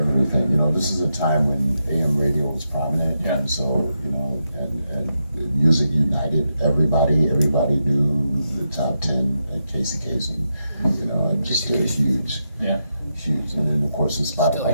everything. You know, this is a time when AM radio was prominent, Yeah. and so you know, and music united everybody. Everybody knew the top 10 at Casey Kasem, you know, and just did a huge. Yeah. Huge, and then of course the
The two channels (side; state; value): both; inverted; correlation -0.85